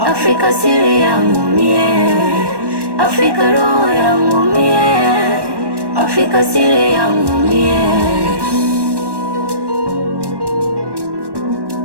siri yangu mie, Afrika roho yangu mie, Afrika siri yangu mie.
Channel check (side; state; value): left; late; 1.1 ms